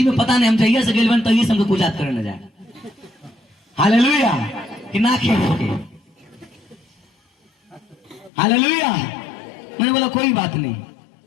में पता नहीं, हम जाइए से गेल तो ये हमको कुजात करे न जाए। हालेलुया, कि ना खेल होके। हालेलुया। मैंने बोला कोई बात नहीं।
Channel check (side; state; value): right; drops out; at 8.3 s